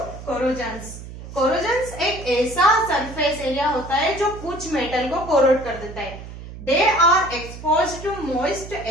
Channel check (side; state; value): right; noise; hum, 13 dB below the sound